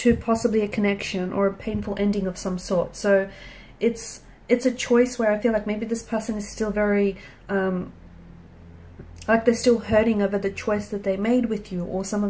possibly a connection, or a painful ending of some sort. So it's a choice where I feel like maybe this person is still very like they're still hurting over the choice that they made with you, or some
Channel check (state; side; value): identical; both; correlation 1.00